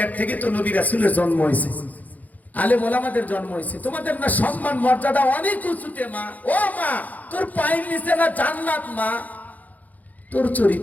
থেকে তো নবী রাসূলের জন্ম হয়েছে, আলেম ওলামাদের জন্ম হয়েছে, তোমাদের না সম্মান মর্যাদা অনেক উঁচুতে মা। ও মা, তোর পায়ের নিচে না জান্নাত মা, তোর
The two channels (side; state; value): right; late; 0.079 ms